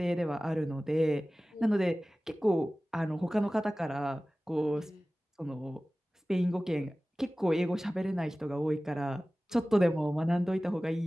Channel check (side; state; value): both; normal; correlation 0.97